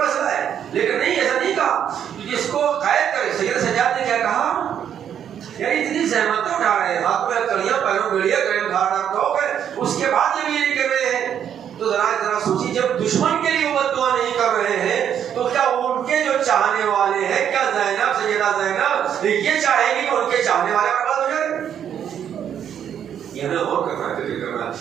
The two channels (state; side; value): quieter; left; 9.1 dB